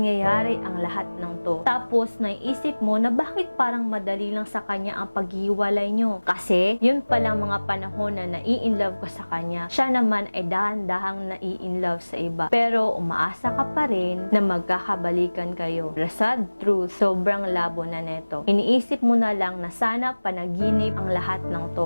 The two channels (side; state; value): both; inverted; correlation -1.00